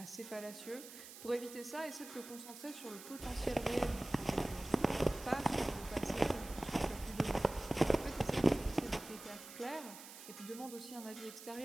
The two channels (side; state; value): right; noise; hiss, 14 dB below the sound